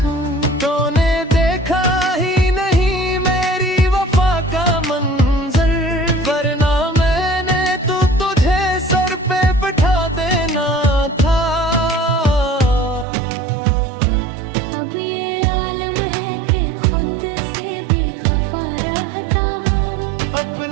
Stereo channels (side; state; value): left; drops out; at 13.1 s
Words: तूने देखा ही नहीं मेरी वफा का मंजर, वरना मैंने तो तुझे सर पे बिठा देना था। अब ये आलम है कि खुद से भी खफा रहता हूँ,